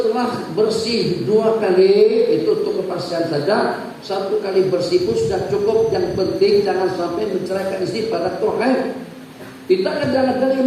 bersih 2 kali, itu untuk kepastian saja. 1 kali bersih pun sudah cukup. Yang penting jangan sampai menceraikan istri pada Tuhan. Kita kadang-kadang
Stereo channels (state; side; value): identical; both; correlation 1.00